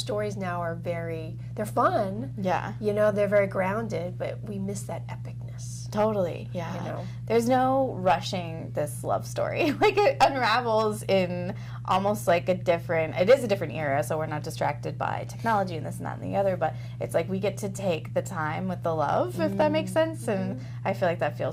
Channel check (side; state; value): both; identical; correlation 1.00